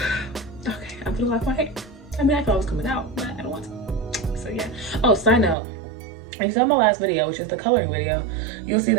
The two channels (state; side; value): drops out; left; at 5.6 s